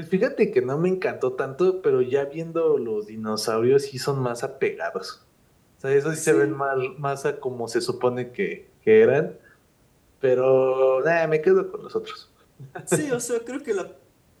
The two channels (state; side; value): identical; both; correlation 1.00